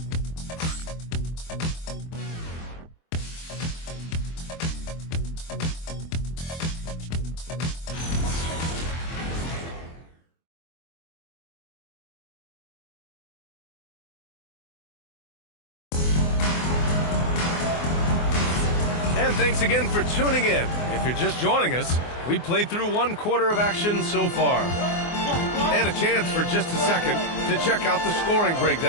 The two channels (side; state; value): right; late; 24 ms